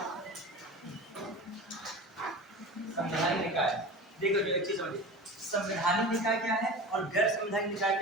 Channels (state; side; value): normal; both; correlation 0.33